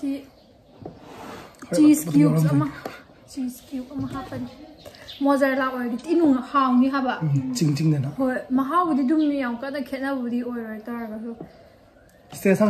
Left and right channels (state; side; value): identical; both; correlation 1.00